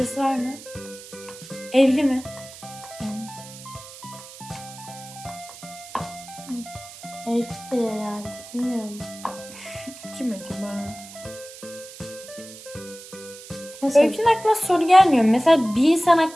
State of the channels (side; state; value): right; noise; hiss, 16 dB below the sound